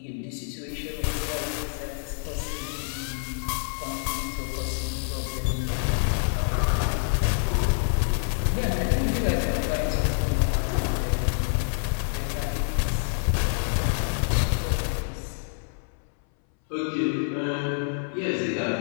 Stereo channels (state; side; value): silent; right; 60 dB below the other